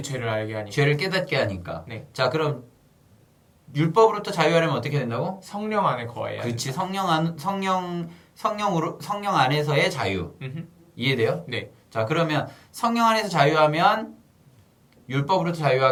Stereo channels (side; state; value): both; identical; correlation 1.00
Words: 죄를 알게 하니까. 죄를 깨닫게 하니까. 네. 자, 그럼 율법으로부터 자유하려면 어떻게 된다고? 성령 안에 거해야 그렇지. 성령 안에서의 자유. 음흠. 이해돼요? 네. 자, 그러면 성령 안에서 자유하면 율법으로부터